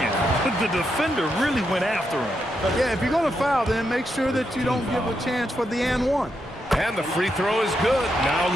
the defender really went after him. Yeah, if you're going to foul, then make sure that you don't give a chance for the and one. And the free throw is good. Now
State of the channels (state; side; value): normal; both; correlation 0.82